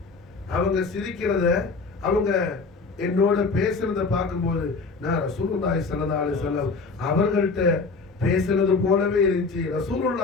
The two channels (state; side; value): quieter; right; 4.2 dB